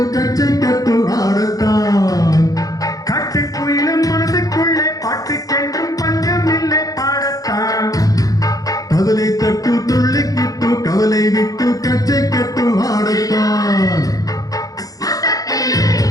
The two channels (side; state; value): right; late; 0.17 ms